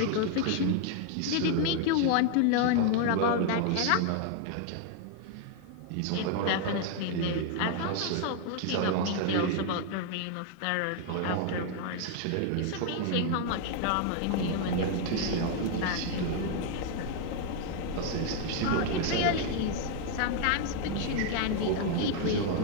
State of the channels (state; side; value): different; both; correlation 0.00